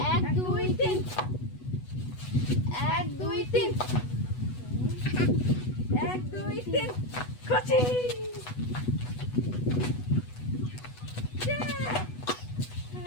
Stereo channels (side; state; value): right; late; 8.1 ms